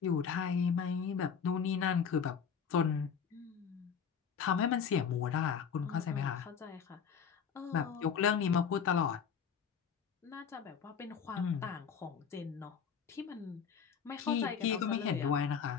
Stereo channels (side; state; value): right; quieter; 6.9 dB